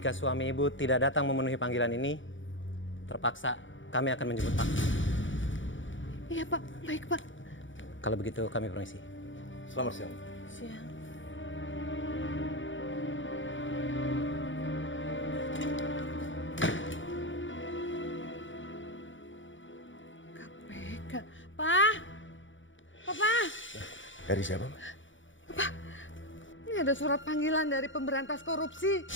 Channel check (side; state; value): right; late; 0.56 ms